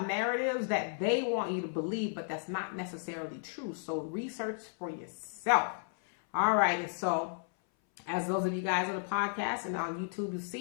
narratives that they want you to believe, but that's not necessarily true. So research for yourself. All right. And so as those of you guys on the podcast and on YouTube, you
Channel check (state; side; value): silent; right; 55 dB below the other